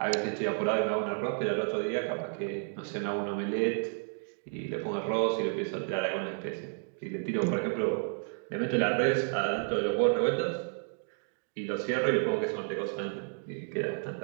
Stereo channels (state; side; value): silent; left; 57 dB below the other